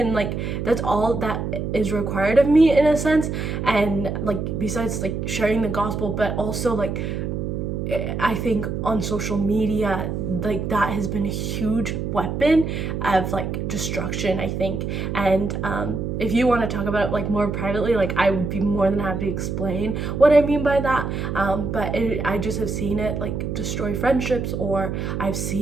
like that's all that is required of me in a sense. And like besides like sharing the gospel, but also like I think on social media, like that has been a huge weapon of like destruction, I think. And if you want to talk about it like more privately, like I would be more than happy to explain what I mean by that. But I just have seen it like destroy friendships, or I've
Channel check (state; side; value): noise; right; hum, 3 dB below the sound